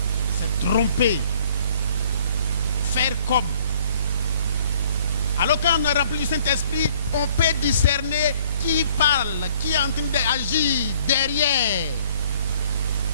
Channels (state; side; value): inverted; both; correlation -0.60